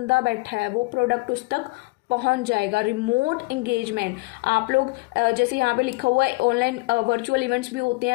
बैठा है वो प्रोडक्ट उस तक पहुंच जाएगा। रिमोट एंगेजमेंट, आप लोग जैसे यहाँ पे लिखा हुआ है ऑनलाइन वर्चुअल इवेंट्स भी होते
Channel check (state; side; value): quieter; right; 24.8 dB